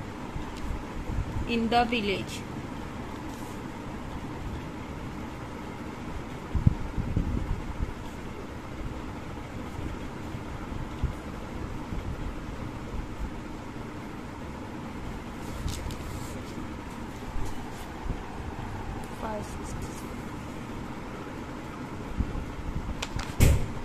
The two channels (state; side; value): identical; both; correlation 1.00